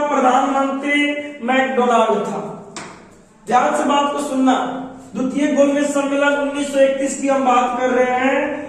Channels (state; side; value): identical; both; correlation 1.00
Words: प्रधानमंत्री मैकडोनाल्ड था। ध्यान से बात को सुनना। द्वितीय गोलमेज सम्मेलन 1931 की हम बात कर रहे हैं,